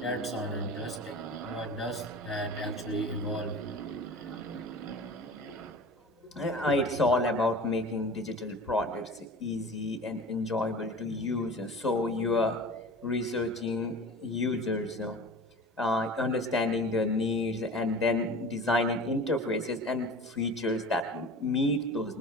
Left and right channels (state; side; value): normal; both; correlation 0.37